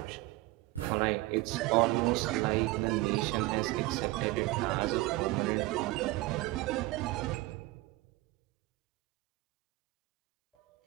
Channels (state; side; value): quieter; left; 20.0 dB